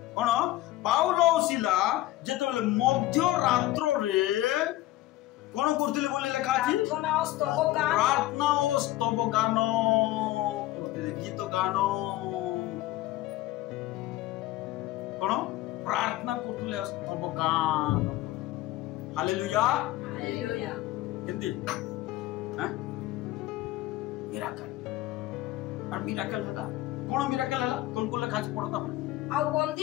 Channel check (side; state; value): right; quieter; 16.0 dB